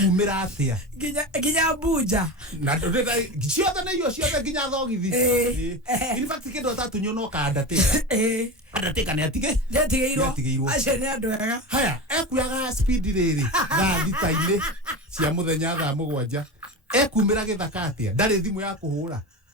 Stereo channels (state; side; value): normal; both; correlation 0.25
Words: atĩa nginya mbunja na ciothe nĩ irio ciothe nginya thogithi in fact kĩndũ atatũnywo no kandatĩka nĩ atigĩirwo acio nĩ andũ ega haya ekuyaga speed rĩrĩ thaa thita-inĩ cia mũthenya thaa mũgwanja ekumĩra gĩthaka atĩa ndarĩ thimũ ya kũhũra